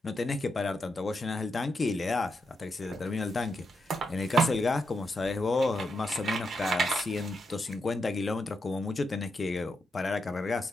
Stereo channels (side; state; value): both; normal; correlation 0.84